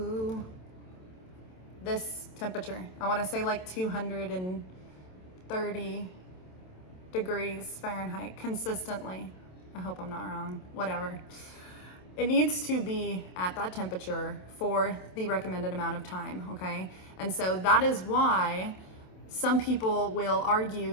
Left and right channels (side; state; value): right; late; 27 ms